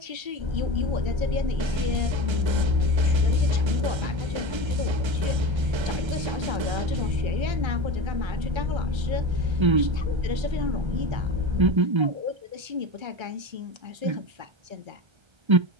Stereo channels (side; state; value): left; late; 1.3 ms